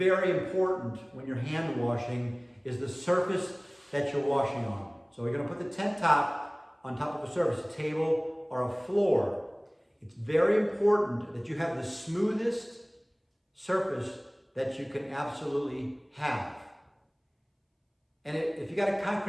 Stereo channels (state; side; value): identical; both; correlation 1.00